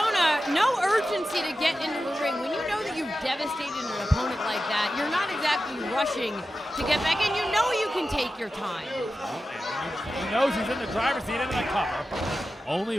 no urgency to get into the ring. When you know that you've devastated an opponent like that, you're not exactly rushing to get back in. You know you can take your time. He knows he's in the driver's seat into the cover.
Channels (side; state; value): both; normal; correlation 0.93